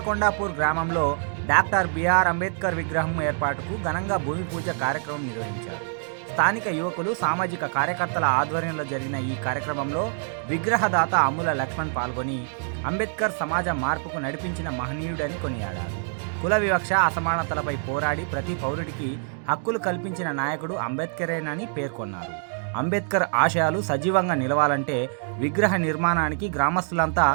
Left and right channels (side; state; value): left; silent; 61 dB below the other